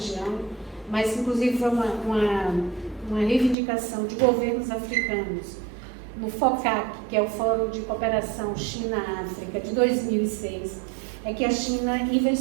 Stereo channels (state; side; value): drops out; left; at 3.6 s